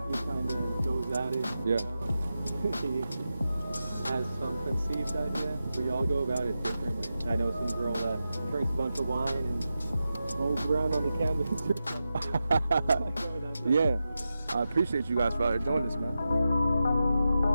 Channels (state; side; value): inverted; both; correlation -0.90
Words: He kind of goes at it. Yeah. He has some conceived idea. We all go about it differently. I know some girl that drinks a bunch of wine and rolls around on the canvas. Yeah. I appreciate you guys for doing this, man.